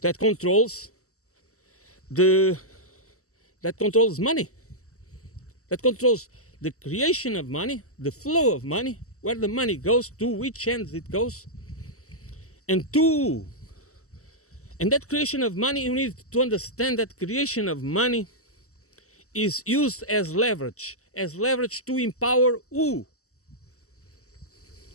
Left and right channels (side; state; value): right; late; 0.64 ms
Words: that controls money, that controls the creation of money, the flow of money, where the money goes, to which ends it goes, and that creation of money, you need to understand that creation of money is used as leverage to empower who?